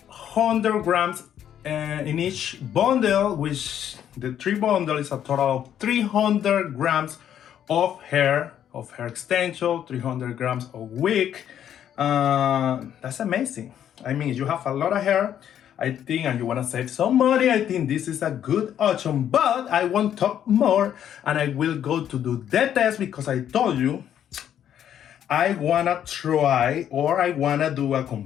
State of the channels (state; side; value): quieter; right; 10.0 dB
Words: 100 grams in each bundle, which the 3 bundle is a total of 300 grams of hair extension, 300 grams of wig. That's amazing. I mean, you have a lot of hair, I think, and you want to save some money, I think this is a good option. But I won't talk more, and I will go to do the test, because I told you I wanna try, or I wanna do a